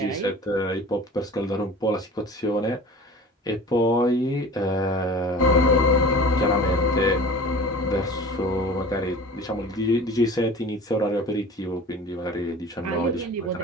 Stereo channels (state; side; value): normal; both; correlation 0.41